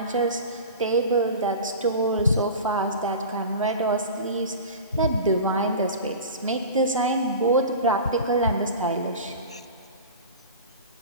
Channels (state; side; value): inverted; both; correlation -0.34